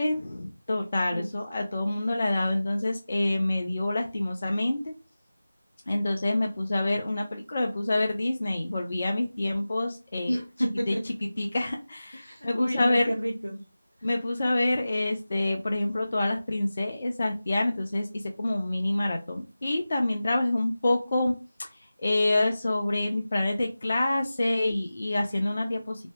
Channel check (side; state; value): both; inverted; correlation -0.96